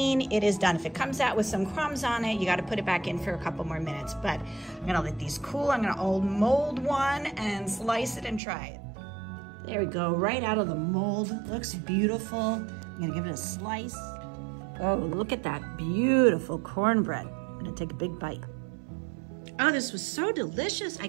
it is done. If it comes out with some crumbs on it, you got to put it back in for a couple more minutes. But I'm gonna let these cool. I'm gonna mold one and slice it and try it. There we go, right out of the mold. Looks beautiful. I'm gonna give it a slice. Oh, look at that beautiful cornbread. I'm gonna take a big bite. Oh, this was so delicious. I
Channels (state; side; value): drops out; left; at 8.4 s